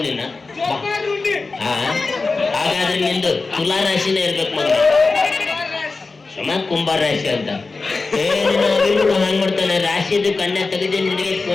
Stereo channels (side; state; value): right; quieter; 3.9 dB